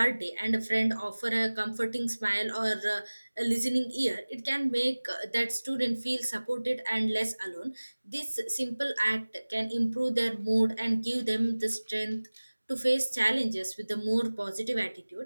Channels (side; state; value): both; inverted; correlation -1.00